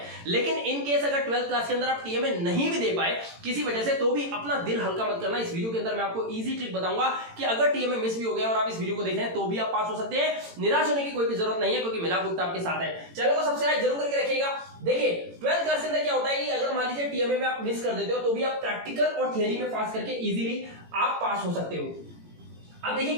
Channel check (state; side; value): late; left; 18 ms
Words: लेकिन इन केस अगर 12th क्लास के अंदर आप टीएमए नहीं भी दे पाए किसी वजह से, तो भी अपना दिल हल्का मत करना। इस वीडियो के अंदर मैं आपको इजी ट्रिक बताऊंगा कि अगर टीएमए मिस भी हो गया और आप इस वीडियो को देख रहे हैं तो भी आप पास हो सकते हैं। निराश होने की कोई भी जरूरत नहीं है, क्योंकि मिला गुप्ता आपके साथ है। चैनल को सब्सक्राइब जरूर करके रखिएगा। देखिए 12th क्लास के अंदर क्या होता है कि अगर मान लीजिए टीएमए में आप मिस कर देते हो तो भी आप प्रैक्टिकल और थ्योरी में पास करके इजीली आप पास हो सकते हो। अब